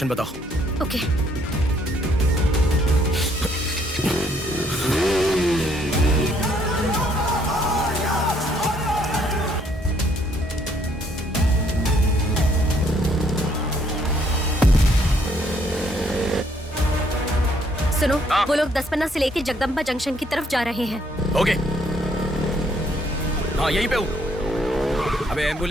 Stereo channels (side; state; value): both; normal; correlation 0.67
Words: बताओ। ओके। सुनो, वो लोग 10 से लेके जगदम्बा जंक्शन की तरफ जा रहे हैं। ओके। हाँ यहीं पे हूँ। अबे